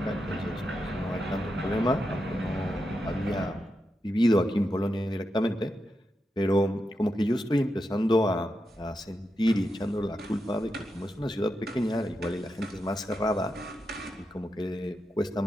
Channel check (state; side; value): normal; both; correlation 0.87